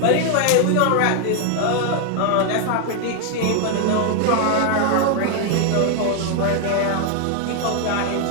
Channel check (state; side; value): different; both; correlation 0.00